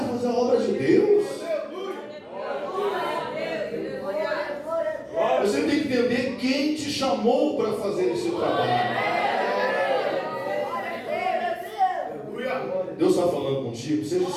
de fazer a obra de Deus. Você tem que entender quem te chamou para fazer esse trabalho. Deus está falando contigo, seja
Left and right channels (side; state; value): both; identical; correlation 1.00